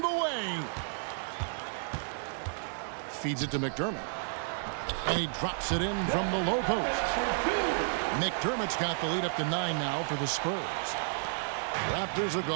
the way. Feeds it to McDermott. And he drops it in from the low post. McDermott's got the lead up to 9 now for the Spurs. Raptors have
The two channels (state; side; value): silent; left; digital silence